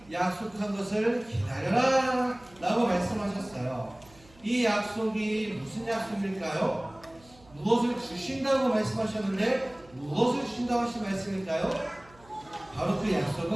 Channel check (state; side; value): noise; right; hum, 26 dB below the sound